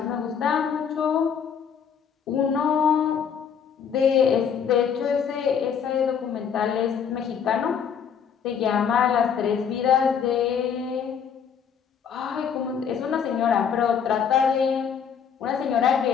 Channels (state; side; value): quieter; right; 7.5 dB